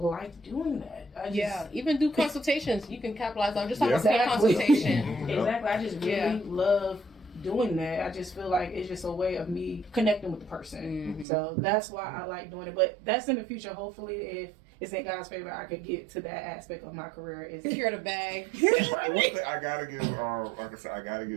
doing that. Even do consultations. You can capitalize on just like a consultation. Exactly. I just really love doing that. I just feel like it's just a way of me connecting with the person. So that's why I like doing it. But that's in the future. Hopefully, if it's in God's favor, I could get to that aspect of my career. Is secure the bag. One thing I gotta give, like I said, I gotta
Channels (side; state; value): left; drops out; at 11.2 s